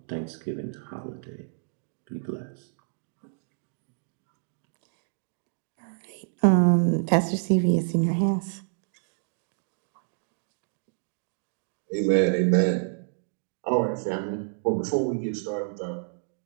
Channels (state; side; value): silent; left; digital silence